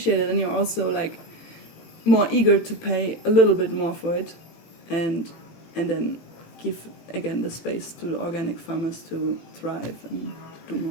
it, then you're also like more eager to pay a little bit more for it, and then give again the space to the organic farmers to thrive and do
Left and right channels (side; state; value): right; late; 18 ms